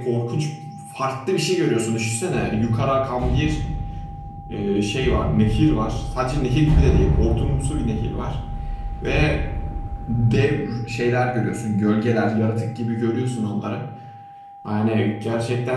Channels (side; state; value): both; identical; correlation 1.00